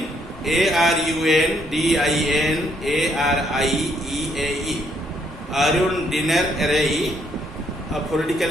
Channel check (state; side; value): normal; both; correlation 0.71